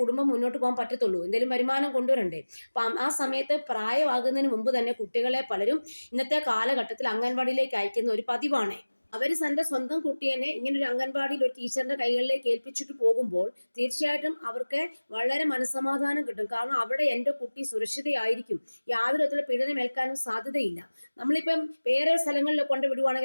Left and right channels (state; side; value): inverted; both; correlation -1.00